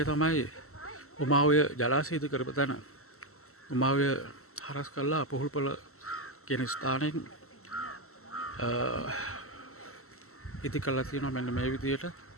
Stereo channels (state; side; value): late; right; 0.63 ms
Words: තමයි උමාවය ජලාශය ඉදි කරපු තැන. උමාවය හරස් කළා පොහුල්පොළ කියන ස්ථානයෙන් ඉදි කරලා තියෙනවා මෙන්න මේ විදියට